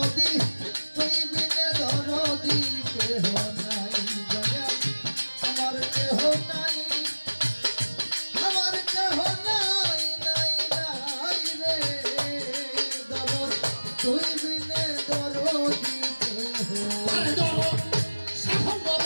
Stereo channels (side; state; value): both; inverted; correlation -1.00